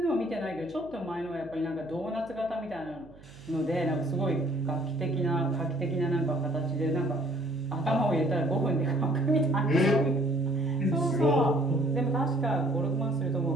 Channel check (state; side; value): noise; right; hum, 22 dB below the sound